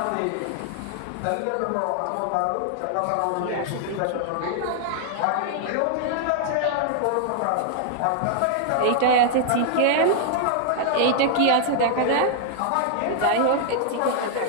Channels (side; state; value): both; different; correlation -0.01